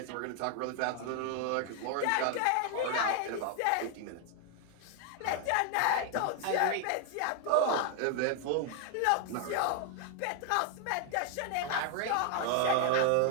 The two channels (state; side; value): different; both; correlation 0.00